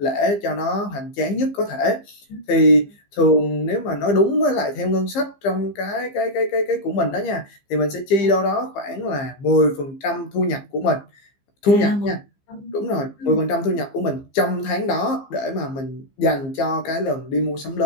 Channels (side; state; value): right; late; 15 ms